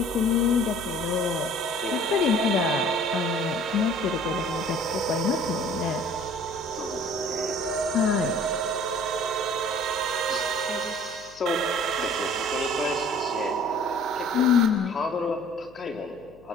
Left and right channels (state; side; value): noise; left; hum, 26 dB below the sound